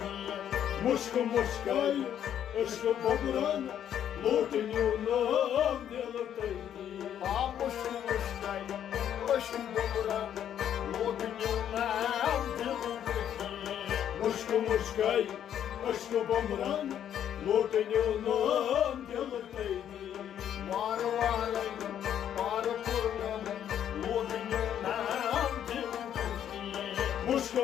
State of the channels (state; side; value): quieter; right; 9.9 dB